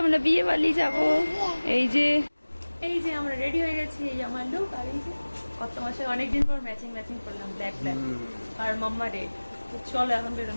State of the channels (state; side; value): inverted; both; correlation -1.00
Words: আমরা বিয়ে বাড়ি যাবো। এই যে আমরা রেডি হয়ে গেছি, এই আমার লুক। আর এই যে কত মাসে অনেকদিন পর ম্যাচিং করলাম, ব্ল্যাক আর মাম্মা রেড। তো চলো এখন